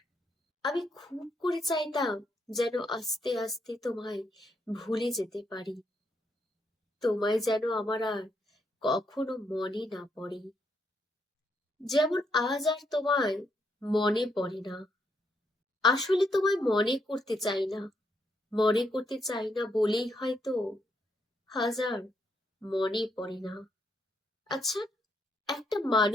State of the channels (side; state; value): both; normal; correlation 0.77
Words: আমি খুব করে চাইতাম যেন আস্তে আস্তে তোমায় ভুলে যেতে পারি, তোমায় যেন আমার আর কখনো মনে না পড়ে। যেমন আজ আর তোমায় মনে পড়ে না। আসলে তোমায় মনে করতে চাই না, মনে করতে চাই না বলেই হয়তো হাজার মনে পড়ে না। আচ্ছা, একটা